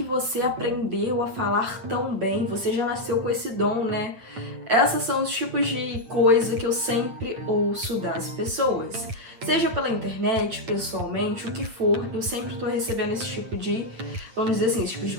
você aprendeu a falar tão bem? Você já nasceu com esse dom, né? Esses são os tipos de coisa que eu sempre ouço das pessoas. Seja pela internet, pessoalmente, o que for, eu sempre tô recebendo esse tipo de, vamos dizer assim, esse tipo de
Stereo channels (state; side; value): late; left; 8.9 ms